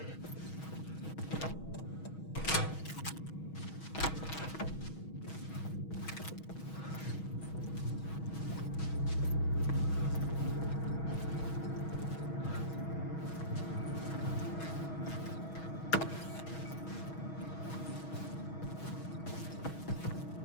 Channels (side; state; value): right; late; 6.3 ms